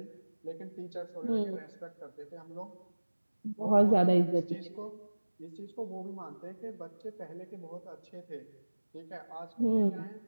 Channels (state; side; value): inverted; both; correlation -1.00